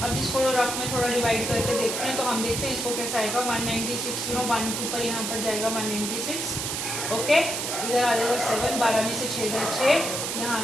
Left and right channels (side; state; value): right; noise; hiss, 2 dB below the sound